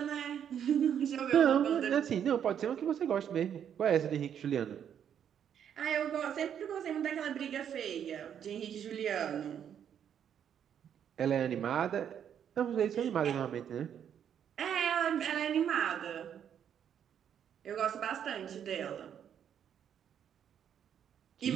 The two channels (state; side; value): quieter; left; 8.9 dB